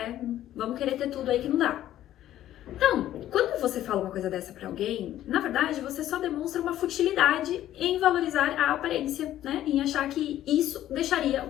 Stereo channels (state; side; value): quieter; right; 12.7 dB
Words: Vamos querer ter tudo aí que não dá. Então, quando você fala uma coisa dessa pra alguém, na verdade você só demonstra uma futilidade em valorizar a aparência, né? Em achar que isso deixaria